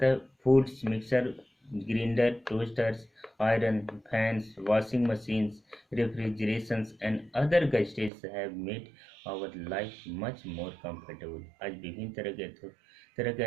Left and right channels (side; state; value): left; drops out; at 8.1 s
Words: foods mixer, grinder, toasters, iron, fans, washing machines, refrigerations and other gadgets have made our life much more comfortable. आज विभिन्न तरह के